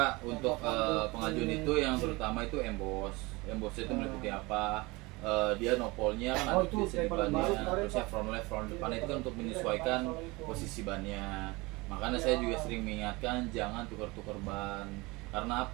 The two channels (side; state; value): left; quieter; 23.8 dB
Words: untuk pengajuan itu yang terutama itu embos. Embosnya itu meliputi apa? Dia nopolnya kan Oh, ada itu tulisan di paling bannya, baru kemarin, terusnya Pak. front left, front depan itu kan untuk menyesuaikan posisi bannya. Makanya saya juga sering mengingatkan jangan tukar-tukar ban. Karena